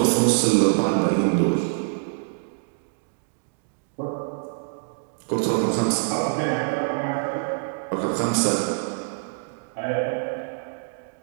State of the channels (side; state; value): left; silent; digital silence